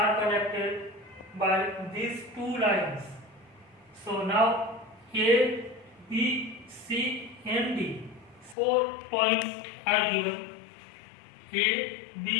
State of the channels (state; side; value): drops out; right; at 8.6 s